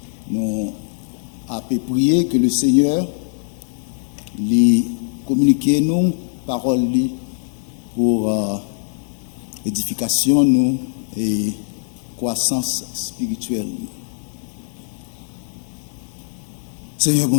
Nous avons prié que le Seigneur lui communique nous paroles pour édification nous et croissance spirituelle. Seigneur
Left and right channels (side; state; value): right; silent; 65 dB below the other